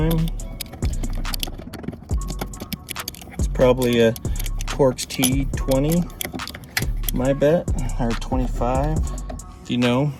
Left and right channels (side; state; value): both; identical; correlation 1.00